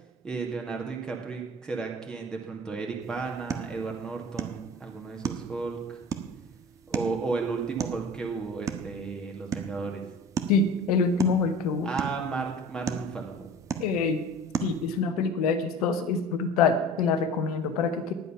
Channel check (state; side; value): normal; both; correlation 0.40